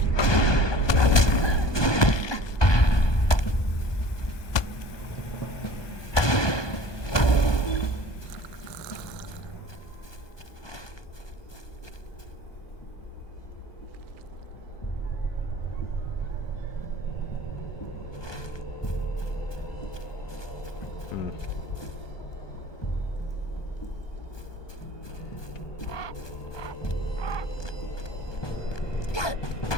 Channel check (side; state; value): right; late; 1.2 ms